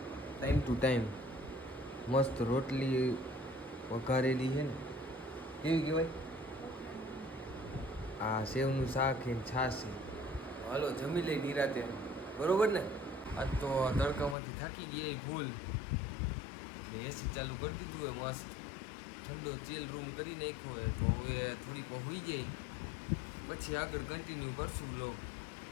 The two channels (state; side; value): drops out; right; at 14.4 s